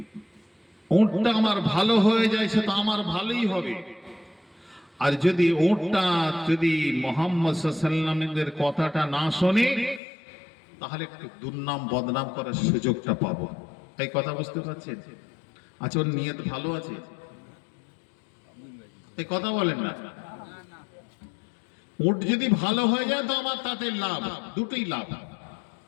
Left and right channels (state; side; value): drops out; right; at 10.0 s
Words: উটটা আমার ভালো হয়ে যায় সে তো আমার ভালোই হবে, আর যদি উটটা যদি মুহাম্মদ সাল্লাল্লাহু আলাইহি সাল্লামের কথাটা না শোনে তাহলে একটু দুর্নাম বদনাম করার সুযোগটা পাবো। এই কথা বুঝতে পারছেন? আচ্ছা, ওর নিয়ত ভালো আছে? এই কথা বলেন না। উট যদি ভালো হয়ে যায় তো আমার তাতে লাভ, দুটোই লাভ।